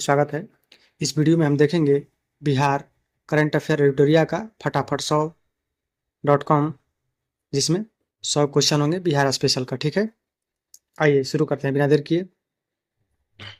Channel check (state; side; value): identical; both; correlation 1.00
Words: स्वागत है। इस वीडियो में हम देखेंगे बिहार करंट अफेयर एडिटोरिया का फटाफट 100.com, जिसमें 100 क्वेश्चन होंगे बिहार स्पेशल का। ठीक है, आइए शुरू करते हैं बिना देर किए।